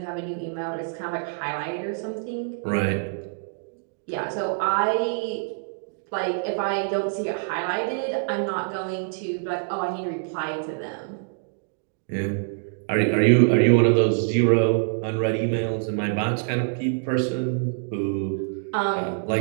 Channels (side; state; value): left; silent; digital silence